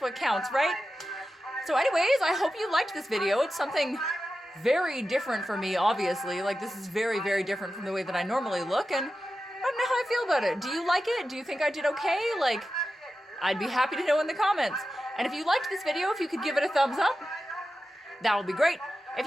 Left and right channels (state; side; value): normal; both; correlation 0.92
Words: counts, right? So anyways, I hope you liked this video. It's something very different for me, obviously. Like, this is very, very different from the way that I normally look, and I don't know how I feel about it. Do you like it? Do you think I did okay? Like, I'd be happy to know in the comments. And if you liked this video, if you could give it a thumbs up, that would be great. If